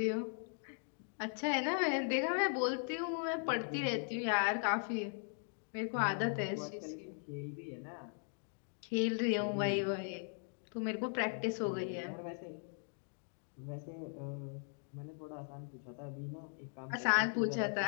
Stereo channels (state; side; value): silent; right; 52 dB below the other